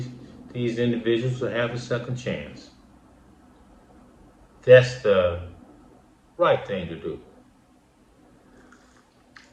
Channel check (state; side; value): identical; both; correlation 1.00